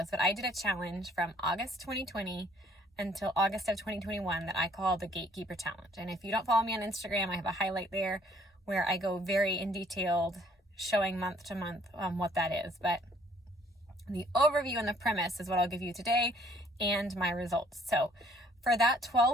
but I did a challenge from August 2020 until August of 2021 that I call the Gatekeeper Challenge. And if you don't follow me on Instagram, I have a highlight there where I go very in detailed, showing month to month what that is. But the overview and the premise is what I'll give you today and my results. So for that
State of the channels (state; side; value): normal; both; correlation 0.61